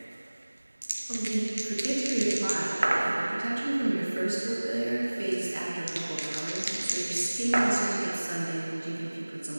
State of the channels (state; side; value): inverted; both; correlation -1.00